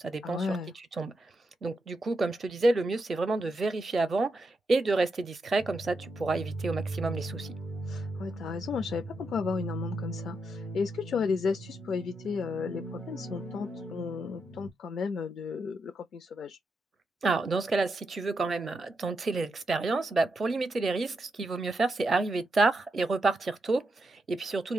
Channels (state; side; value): normal; both; correlation 0.83